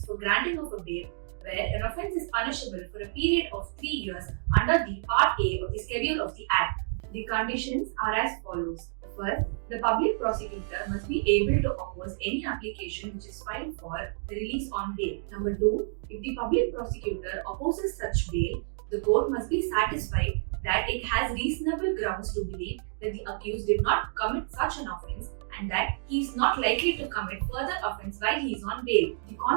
for granting of a bail where an offence is punishable for a period of 3 years under the Part A of the Schedule of the Act. The conditions are as follows. First, the public prosecutor must be able to oppose any application which is filed for the release on bail. Number 2, if the public prosecutor opposes such bail, the court must be satisfied that it has reasonable grounds to believe that the accused did not commit such an offence and that he is not likely to commit further offence while he is on bail. The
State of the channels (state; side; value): silent; left; digital silence